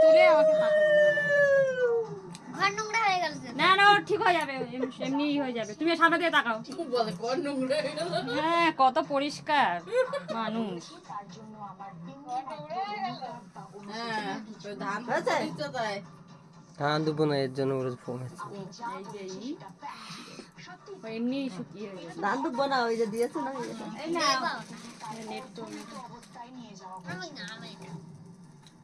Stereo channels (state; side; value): identical; both; correlation 1.00